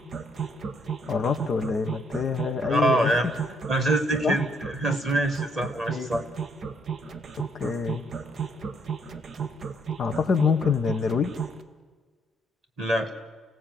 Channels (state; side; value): normal; both; correlation 0.69